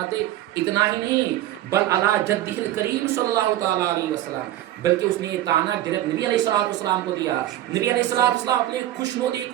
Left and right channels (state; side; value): quieter; left; 13.9 dB